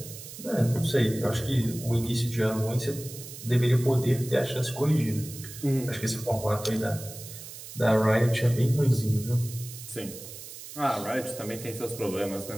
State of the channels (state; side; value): noise; right; hiss, 13 dB below the sound